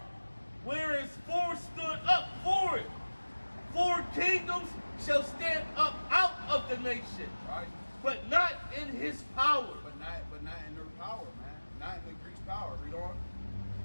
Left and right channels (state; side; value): inverted; both; correlation -1.00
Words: whereas four stood up for it, 4 kingdoms shall stand up out of the nation, Right? but not in his power. But not in their power, man. Not in the Greeks' power. Read on.